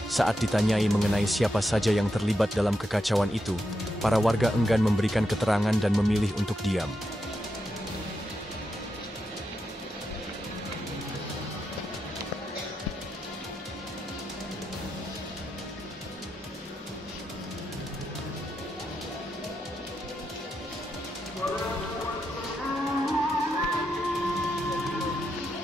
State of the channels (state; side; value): normal; both; correlation 0.85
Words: Saat ditanyai mengenai siapa saja yang terlibat dalam kekacauan itu, para warga enggan memberikan keterangan dan memilih untuk diam.